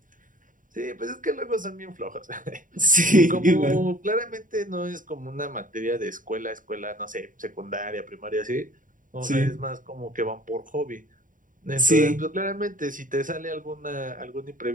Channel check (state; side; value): late; left; 0.39 ms